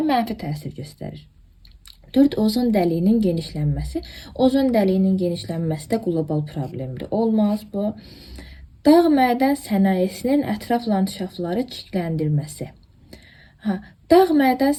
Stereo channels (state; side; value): identical; both; correlation 1.00